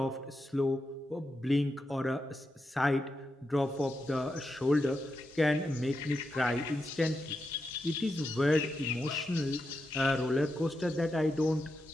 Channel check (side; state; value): both; normal; correlation 0.87